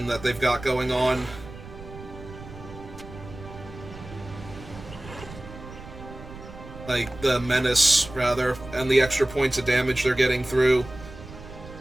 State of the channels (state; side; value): noise; right; rumble, 15 dB below the sound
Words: that they've got going on. Like, the menace, rather, and the extra points of damage they're getting through.